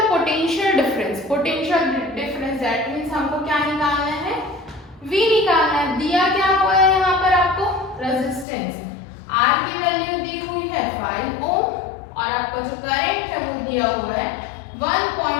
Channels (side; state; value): right; drops out; at 8.5 s